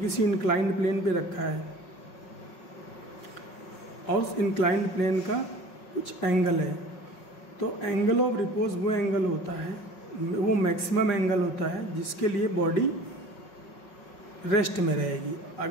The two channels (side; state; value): right; late; 5.4 ms